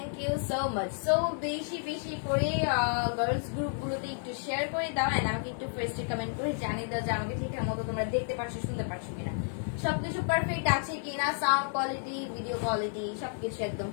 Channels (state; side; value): silent; right; 57 dB below the other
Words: you so much. So বেশি বেশি করে গার্লস গ্রুপ গুলোতে একটু শেয়ার করে দাও, এন্ড আমাকে একটু ফার্স্টে কমেন্ট করে জানিয়ে দাও যে আমাকে ঠিকঠাক মতো তোমরা দেখতে পাচ্ছ, শুনতে পাচ্ছ কিনা, সবকিছু পারফেক্ট আছে কিনা, সাউন্ড কোয়ালিটি, ভিডিও কোয়ালিটি সবকিছু একদম